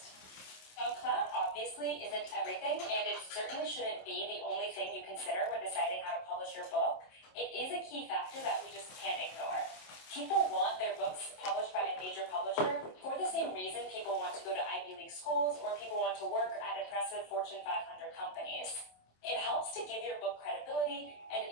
Now, clout obviously isn't everything, and it certainly shouldn't be the only thing you consider when deciding how to publish your book. It is a key factor that we just can't ignore. People want their books published by a major publisher for the same reason people want to go to Ivy League schools or people want to work at impressive Fortune 500 companies. It helps to give your book credibility, and it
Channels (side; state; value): right; late; 27 ms